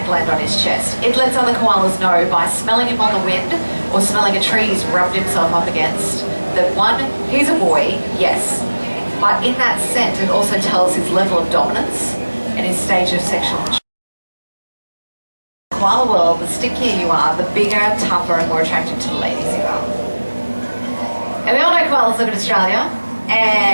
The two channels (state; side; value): inverted; both; correlation -1.00